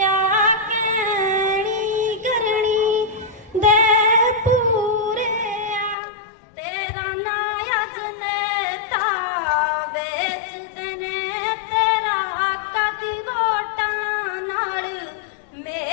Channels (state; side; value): drops out; right; at 6.0 s